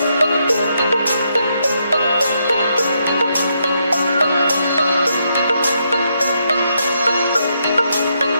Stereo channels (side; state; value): both; inverted; correlation -0.78